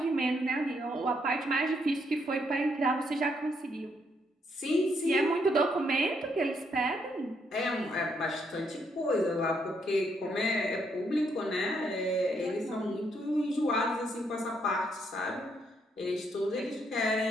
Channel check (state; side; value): normal; both; correlation 0.74